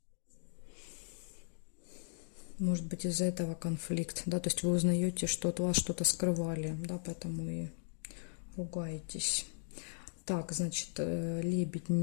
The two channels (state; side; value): silent; right; digital silence